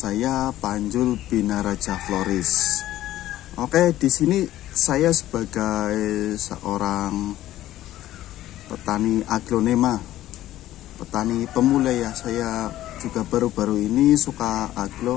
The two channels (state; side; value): quieter; right; 14.1 dB